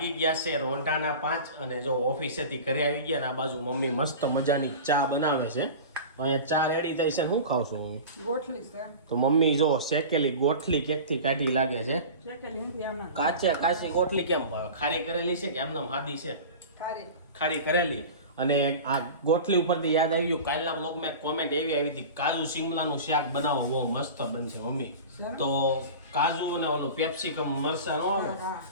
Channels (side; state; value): both; inverted; correlation -0.34